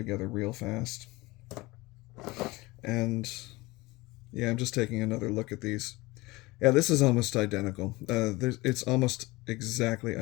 real fast. And yeah, I'm just taking another look at these. Yeah, this is almost identical. It's almost exactly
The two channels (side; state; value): right; quieter; 21.8 dB